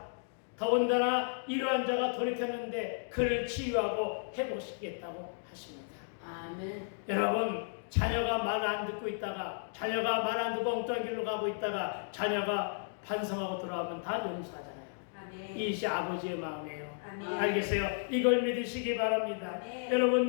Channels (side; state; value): right; silent; digital silence